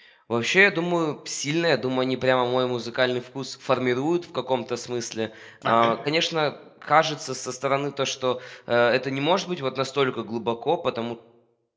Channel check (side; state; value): both; identical; correlation 1.00